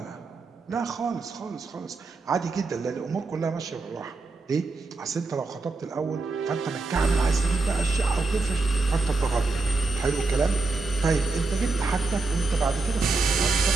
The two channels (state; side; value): quieter; left; 3.7 dB